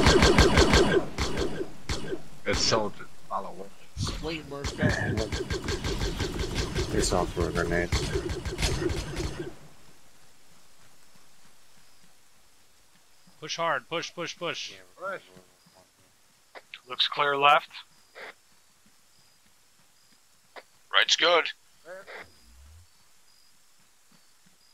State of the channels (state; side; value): identical; both; correlation 1.00